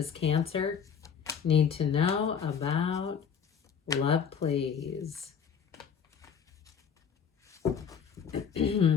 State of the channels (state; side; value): quieter; right; 7.1 dB